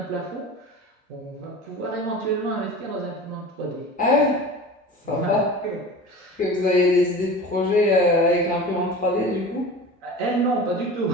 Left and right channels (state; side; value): normal; both; correlation 0.35